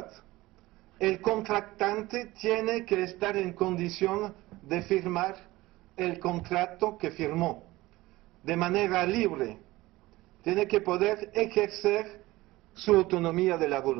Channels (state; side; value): quieter; left; 19.0 dB